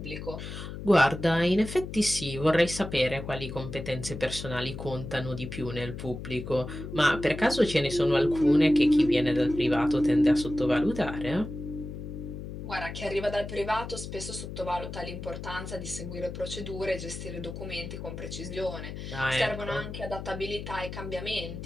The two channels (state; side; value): noise; left; hum, 9 dB below the sound